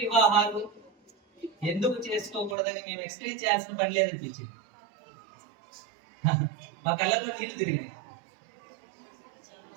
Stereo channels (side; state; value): left; drops out; at 2.6 s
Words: ఎందుకు చేసుకోకూడదని మేము ఎక్స్ప్లెయిన్ చేయాల్సిన పని లేదనిపించింది. మా కళ్ళలో నీళ్లు తిరిగినాయి.